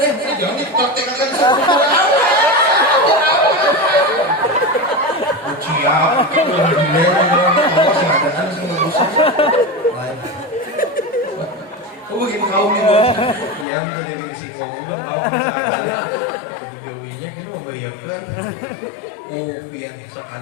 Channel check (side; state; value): right; drops out; at 13.7 s